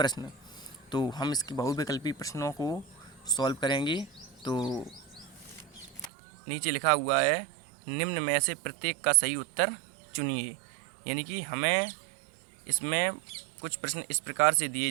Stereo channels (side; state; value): left; drops out; at 6.1 s